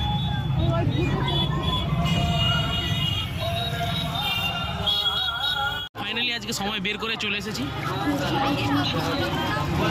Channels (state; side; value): identical; both; correlation 1.00